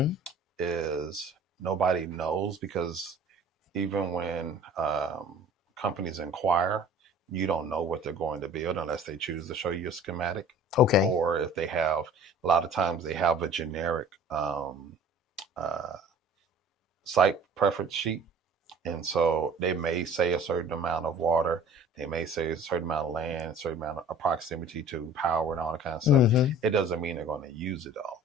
is nobody knows, because even when companies inquire, you don't know what they're going to build unless they choose to show you a schematic, Okay. or if they have, a lot of times they have a generic uh, site preference sheet. And so they may say a certain amount of water, they may say a certain amount of land, a certain amount of proximity to power and all that kind of stuff. Mm-hmm. It doesn't mean they're going to use it all.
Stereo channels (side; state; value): both; normal; correlation 0.46